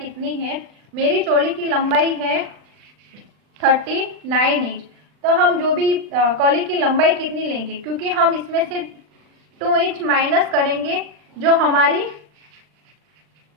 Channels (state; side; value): late; left; 39 ms